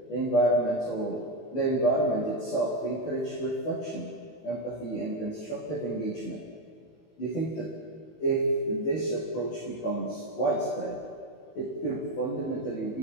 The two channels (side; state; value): right; late; 18 ms